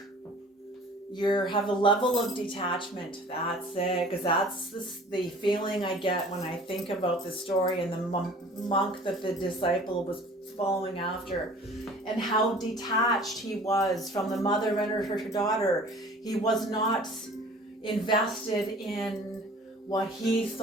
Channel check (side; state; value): both; normal; correlation 0.47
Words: You have a level of detachment. That's it, because that's the feeling I get when I think about the story and the monk that the disciple was following after, and how detached he was from the mother and her daughter. He was not invested in what he